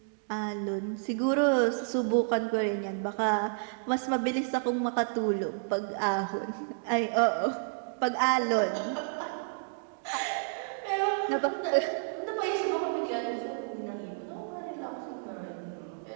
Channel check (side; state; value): left; silent; digital silence